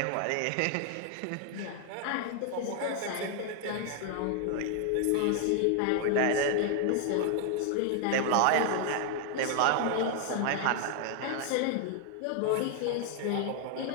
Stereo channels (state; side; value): different; both; correlation 0.00